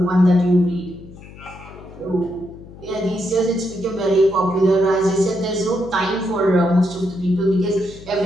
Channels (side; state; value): left; noise; hum, 18 dB below the sound